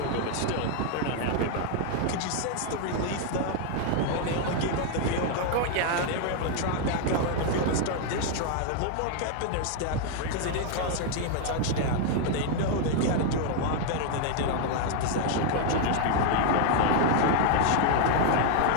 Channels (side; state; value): both; different; correlation 0.00